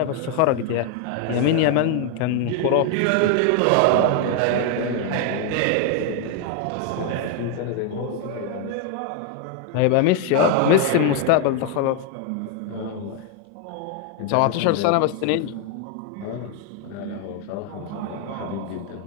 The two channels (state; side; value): different; both; correlation 0.00